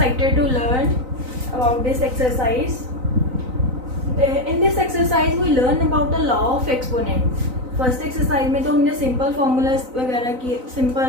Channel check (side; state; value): left; late; 3.9 ms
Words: to learn about this exercise. In this exercise we learn about the law of exponent. First exercise में तो हमने simple formulas वगैरह की,